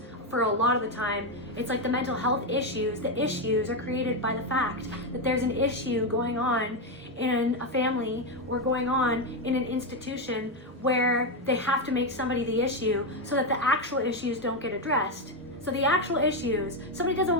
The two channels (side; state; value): both; normal; correlation 0.07